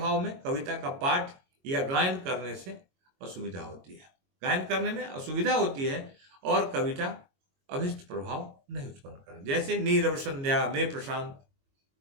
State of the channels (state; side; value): late; left; 22 ms